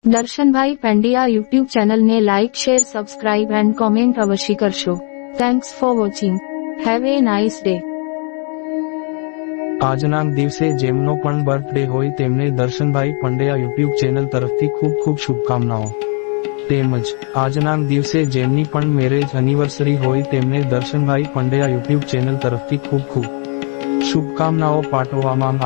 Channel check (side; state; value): right; quieter; 39.2 dB